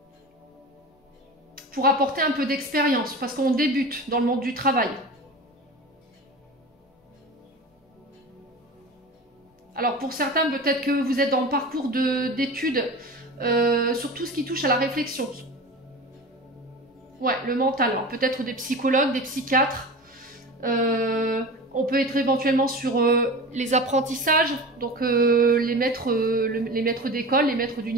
pour apporter un peu d'expérience, parce qu'on débute dans le monde du travail. Alors pour certains, peut-être que vous êtes dans le parcours d'études sur tout ce qui touche à la réflexion. Ouais, le mental. Alors peut-être des psychologues, des psychiatres. On peut être éventuellement sur les apprentissages, donc les maîtres d'école, les maîtres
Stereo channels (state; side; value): normal; both; correlation 0.32